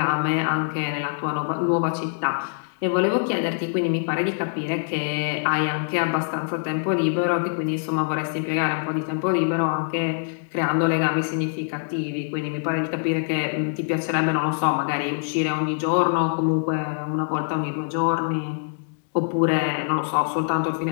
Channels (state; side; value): silent; right; digital silence